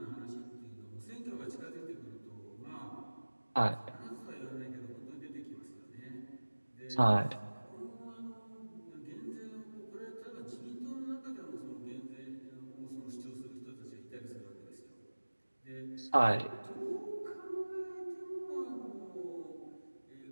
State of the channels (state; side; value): inverted; both; correlation -1.00